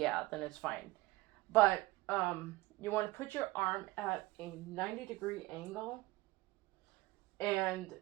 then it's fine. But you want to put your arm at a 90-degree angle, and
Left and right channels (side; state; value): left; quieter; 19.8 dB